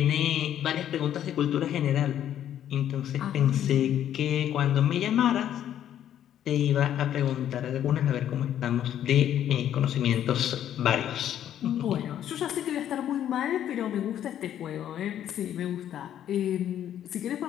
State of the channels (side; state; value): right; quieter; 10.7 dB